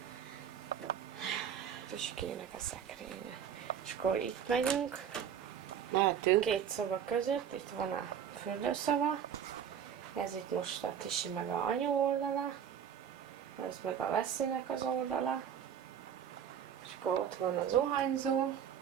Tüskének a szekrénye. És akkor itt megyünk, Mehetünk. két szoba között, itt van a fürdőszoba, ez itt most a Tisi meg a anyu oldala, ez meg a Veszélynek az oldala, és akkor ott van a zuhanyzó,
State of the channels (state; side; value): quieter; left; 8.6 dB